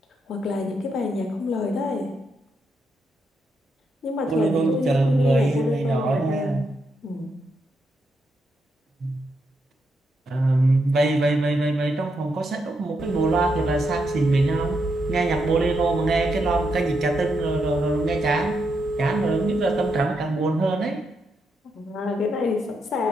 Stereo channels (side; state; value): both; normal; correlation 0.81